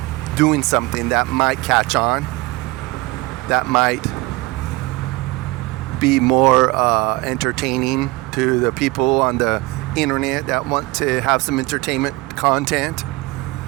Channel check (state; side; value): quieter; left; 22.4 dB